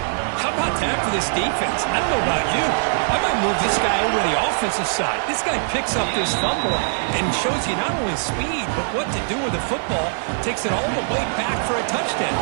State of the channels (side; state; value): left; silent; digital silence